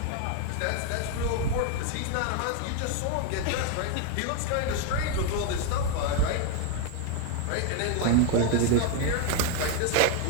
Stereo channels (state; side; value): different; both; correlation 0.01